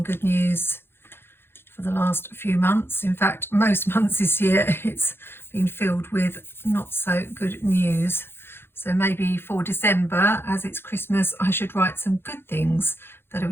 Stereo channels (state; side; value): late; right; 0.11 ms